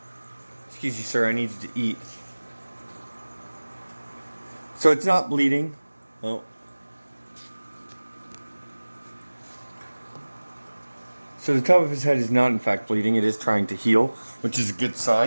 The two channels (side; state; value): both; inverted; correlation -1.00